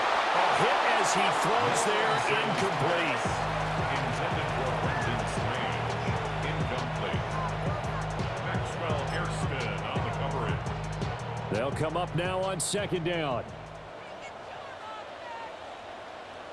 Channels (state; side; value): identical; both; correlation 1.00